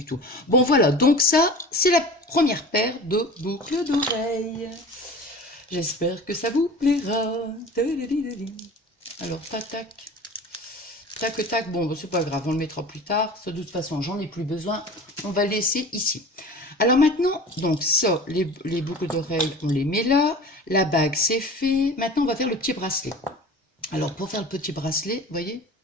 tout. Bon, voilà, donc ça, c'est la première paire de boucles d'oreilles. J'espère que ça vous plaira. Alors, tac, tac. Tac, tac. Bon, c'est pas grave, on le mettra plus tard. De toute façon, j'en ai plus besoin. On va le laisser ici. Alors maintenant, donc ça, les boucles d'oreilles, on les met là. La bague, c'est fait. Maintenant, on va faire le petit bracelet. Alors, pour faire le petit bracelet, vous voyez,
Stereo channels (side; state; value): both; normal; correlation 0.38